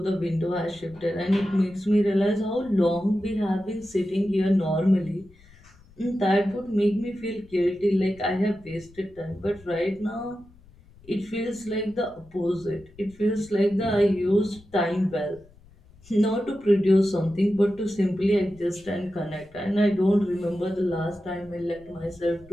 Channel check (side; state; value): left; noise; rumble, 26 dB below the sound